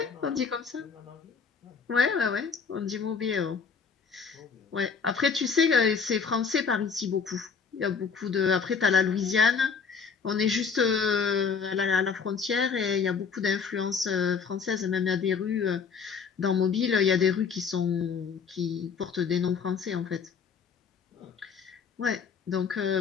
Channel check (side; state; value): right; quieter; 5.9 dB